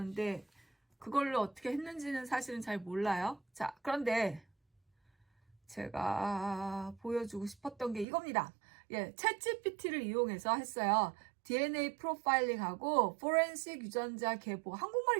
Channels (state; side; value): drops out; left; at 8.1 s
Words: 그걸로 어떻게 했는지는 사실은 잘 몰라요. 자, 그런데 제가 보여주고 싶었던 게 이겁니다. 예, 챗GPT를 이용해서 했어요. DNA 프로파일링하고 포렌식 유전자 계보.